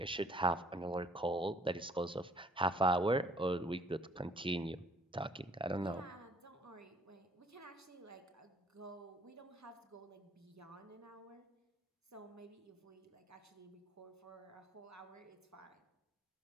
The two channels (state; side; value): normal; both; correlation 0.59